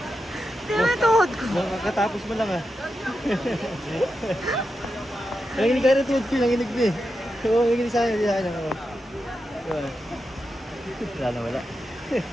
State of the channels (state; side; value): normal; both; correlation 0.88